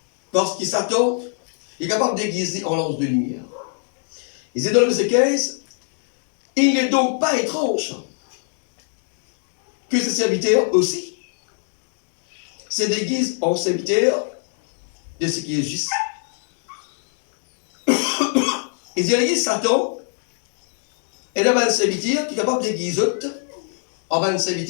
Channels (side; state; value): right; silent; 63 dB below the other